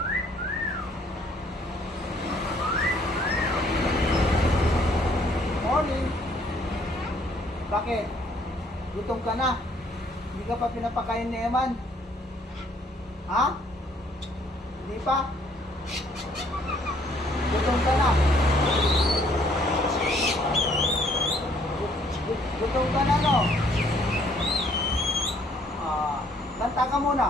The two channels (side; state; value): both; normal; correlation 0.64